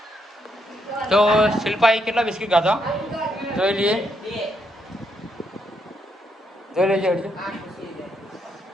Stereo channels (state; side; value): normal; both; correlation 0.77